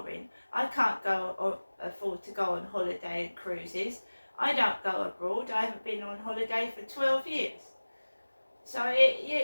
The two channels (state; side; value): inverted; both; correlation -1.00